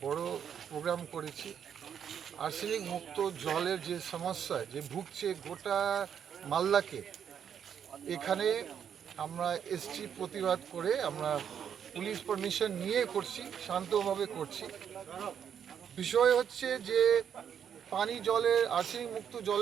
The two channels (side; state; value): left; quieter; 8.3 dB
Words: বড় প্রোগ্রাম করেছি। আর্সেনিক মুক্ত জলের যে সমস্যা যে ভুগছে গোটা মালদাকে, এখানে আমরা এসছি প্রতিবাদ করে। আমরা পুলিশ পারমিশন নিয়ে করছি, শান্তভাবে করছি। বিষয় হচ্ছে যে পানি জলের আর্সেনিক মুক্ত